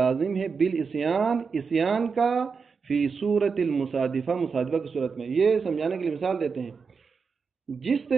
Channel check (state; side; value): quieter; left; 5.3 dB